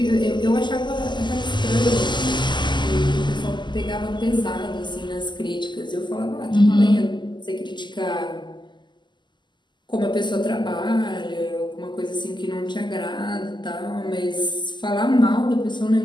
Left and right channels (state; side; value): late; right; 0.22 ms